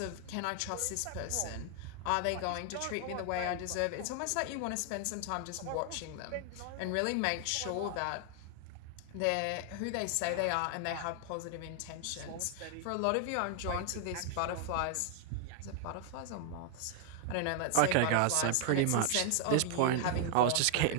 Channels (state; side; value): different; both; correlation 0.00